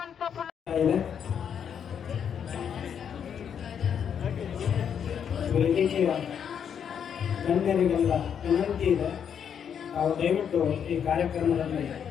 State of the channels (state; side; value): quieter; right; 8.0 dB